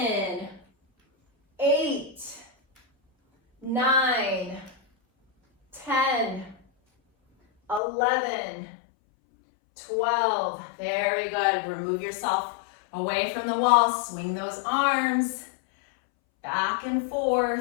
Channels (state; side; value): drops out; right; at 7.8 s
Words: 8, 9, 10, 11, 12. Very good. Remove yourself away from the wall. Swing those arms back and